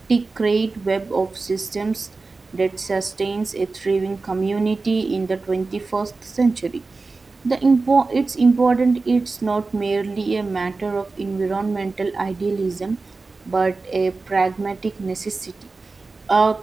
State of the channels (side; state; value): left; quieter; 3.8 dB